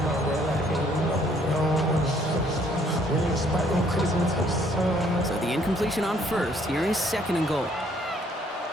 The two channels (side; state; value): both; normal; correlation 0.64